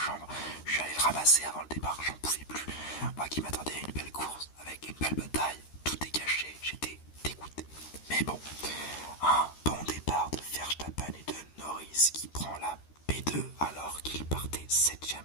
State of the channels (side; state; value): right; late; 13 ms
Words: je suis allé le ramasser avant le départ, j'en pouvais plus. Moi qui m'attendais à une belle course, avec une belle bataille, tout est gâché, j'étais dégoûté. Mais bon, un bon départ de Verstappen et de Norris qui prend la P2 alors qu'il partait 7ème.